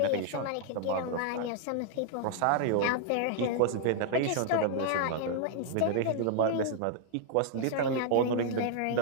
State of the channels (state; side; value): different; both; correlation 0.00